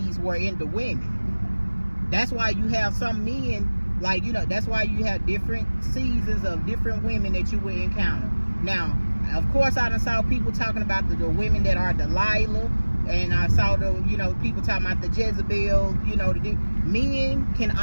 were in the women. That's why you have some men, like, you know, that's why you have different seasons of different women that you will encounter. Now, of course, I done saw people talking about the women that are Delilah, and I saw people talking about the Jezebel. Men can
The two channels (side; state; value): both; inverted; correlation -1.00